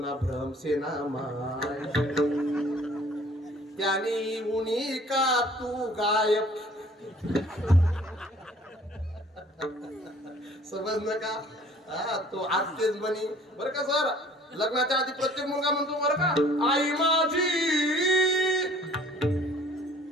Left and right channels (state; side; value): normal; both; correlation 0.54